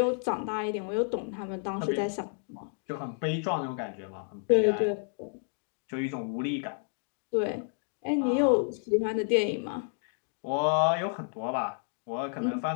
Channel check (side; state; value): right; silent; 57 dB below the other